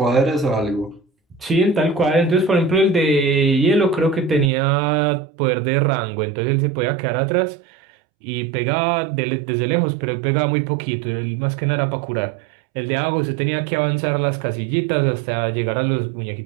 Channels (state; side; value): drops out; left; at 4.5 s